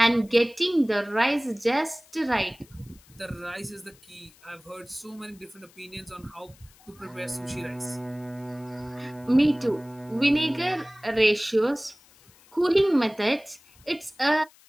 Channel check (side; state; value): left; noise; hiss, 27 dB below the sound